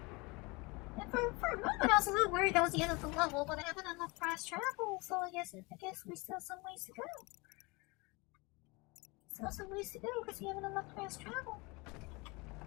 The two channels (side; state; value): right; quieter; 26.3 dB